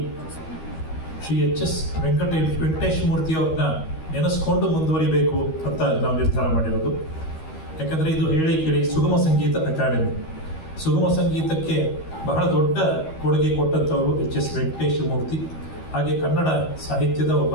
ಶ್ರೀ ಎಚ್.ಎಸ್. ವೆಂಕಟೇಶ ಮೂರ್ತಿಯವ್ರನ್ನ ನೆನೆಸ್ಕೊಂಡು ಮುಂದುವರಿಬೇಕು ಅಂತ ನಾವು ನಿರ್ಧಾರ ಮಾಡಿರೋದು. ಯಾಕಂದರೆ ಇದು ಹೇಳಿ ಕೇಳಿ ಸುಗಮ ಸಂಗೀತ ಅಕಾಡೆಮಿ. ಸುಗಮ ಸಂಗೀತಕ್ಕೆ ಬಹಳ ದೊಡ್ಡ ಕೊಡುಗೆ ಕೊಟ್ಟಂಥವರು ಎಚ್.ಎಸ್. ವೆಂಕಟೇಶ ಮೂರ್ತಿ. ಹಾಗೆ ಕನ್ನಡ ಸಾಹಿತ್ಯದ ಒಬ್ಬ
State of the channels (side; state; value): right; late; 13 ms